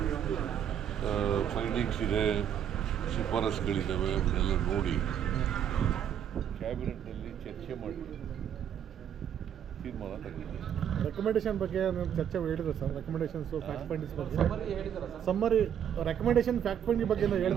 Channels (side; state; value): left; quieter; 9.2 dB